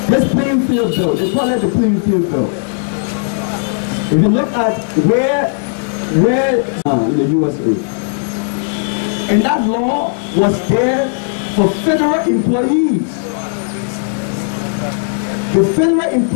This playing field bill, they call it the playing field bill. If you look at where in the USA, and that law was there for federal employees. The federal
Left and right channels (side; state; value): right; silent; digital silence